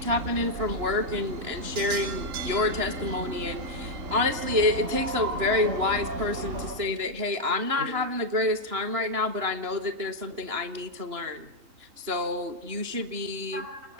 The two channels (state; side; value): late; left; 2.9 ms